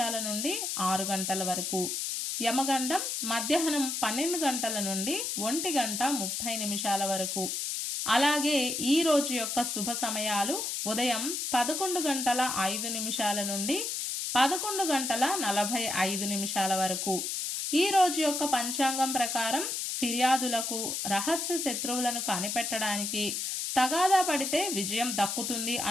నుండి 6 గంటల వరకు, యమగండం మధ్యాహ్నం 12 గంటల నుండి 1:30 వరకు. అలాగే ఈ రోజు యొక్క శుభ సమయాలు ఉదయం 11:05 నుండి 11:45 వరకు. ఈ రోజు యొక్క పంచాంగం ప్రకారం ఫిర్యాదులకు, రహస్య శత్రువులను కనిపెట్టడానికి, తగాదా పడితే విజయం దక్కుతుంది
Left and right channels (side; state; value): left; noise; hiss, 2 dB below the sound